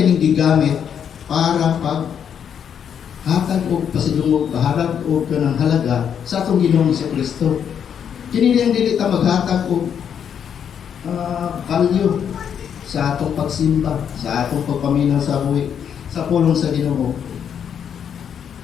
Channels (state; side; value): quieter; right; 8.2 dB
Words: gigamit para hatag o pasidungog, baharag o kanang halaga sa atong Ginoong sa Kristo. Kini niyang dili ta maghatag og value sa atong pagsimba, sa atong pagpaminaw sa buhi, sa pulong sa Ginoo.